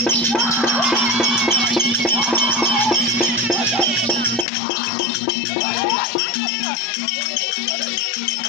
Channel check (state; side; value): drops out; right; at 4.5 s